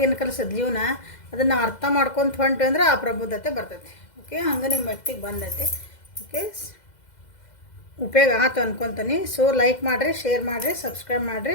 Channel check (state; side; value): late; right; 2.0 ms